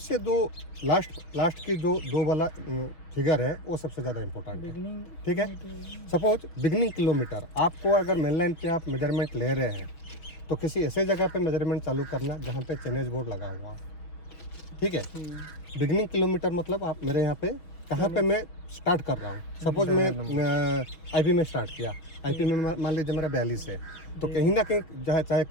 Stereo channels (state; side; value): late; right; 6.0 ms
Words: दो लास्ट की जो 2 वाला फिगर है वो सबसे ज़्यादा इम्पोर्टेंट है, बिगनिंग, ठीक है। सपोज बिगनिंग किलोमीटर, आपको अगर मेन लाइन पे आप मेजरमेंट ले रहे हैं तो किसी ऐसे जगह पे मेजरमेंट चालू करना जहाँ पे चेनेज बोर्ड लगा हुआ, ठीक है। बिगनिंग किलोमीटर मतलब आप मेरे यहाँ पे कहाँ पे मैं स्टार्ट कर रहा हूँ। सपोज मैं IP में स्टार्ट किया, IP में मान लीजिए मेरा 42 है, तो कहीं ना कहीं चाहे